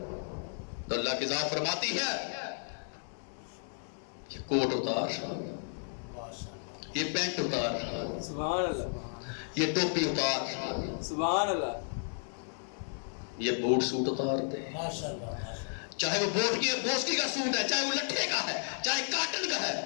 تو اللہ کی ذات فرماتی ہے یہ کوٹ اتار, یہ پینٹ اتار, سبحان اللہ, یہ ٹوپی اتار, سبحان اللہ, یہ بوٹ سوٹ اتار دے. چاہے وہ بوسکی کا سوٹ ہے, چاہے وہ لٹھے کا ہے, چاہے کاٹن کا ہے,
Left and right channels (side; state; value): right; silent; digital silence